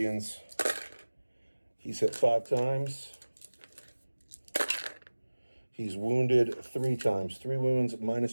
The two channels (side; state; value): both; inverted; correlation -1.00